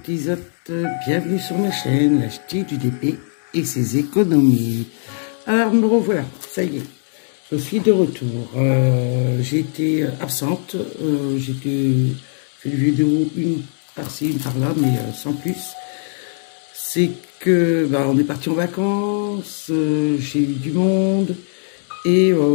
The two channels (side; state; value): right; silent; 66 dB below the other